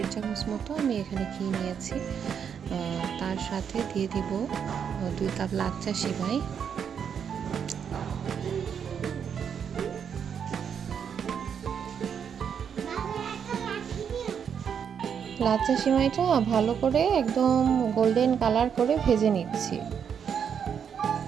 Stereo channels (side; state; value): left; quieter; 7.6 dB